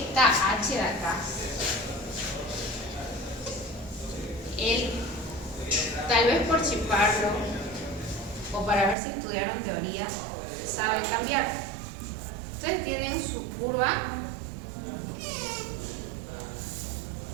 H de acá, él, tal vez por chiparlo o para ver si estudiaron teoría, sabe cambiar. Ustedes tienen su curva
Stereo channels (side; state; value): left; drops out; at 9.0 s